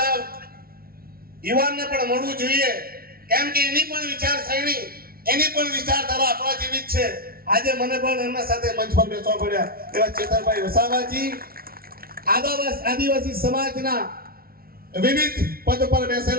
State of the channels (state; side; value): late; left; 0.44 ms